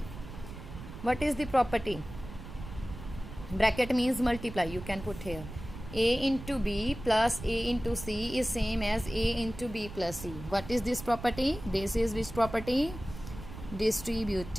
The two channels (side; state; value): right; noise; rumble, 12 dB below the sound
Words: What is the property? Bracket means multiply, you can put here. A into B plus A into C is same as A into B plus C. What is this property? This is which property?